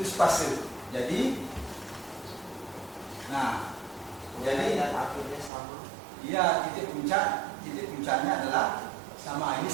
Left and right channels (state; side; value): drops out; left; at 5.5 s